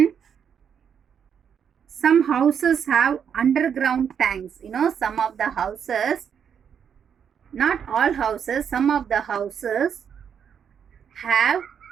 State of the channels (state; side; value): quieter; left; 7.7 dB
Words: some houses have underground tanks. Some of the houses, not all houses, some of the houses have